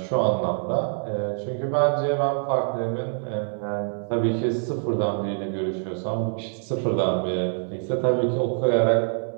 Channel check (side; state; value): left; silent; digital silence